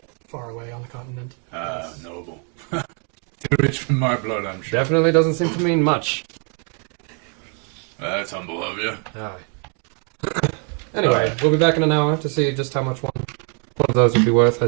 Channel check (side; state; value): left; quieter; 39.8 dB